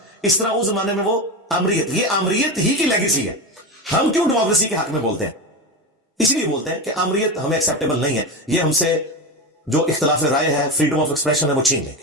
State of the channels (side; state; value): both; normal; correlation 0.19